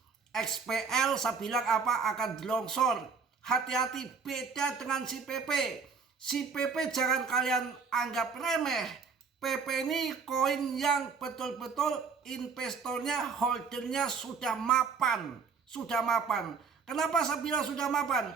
XPL saya bilang apa akan longsor. Hati-hati, beda dengan si PP. Si PP jangan kalian anggap remeh. PP ini koin yang betul-betul investornya, holdernya sudah mapan. Kenapa saya bilang sudah mapan?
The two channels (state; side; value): quieter; left; 5.4 dB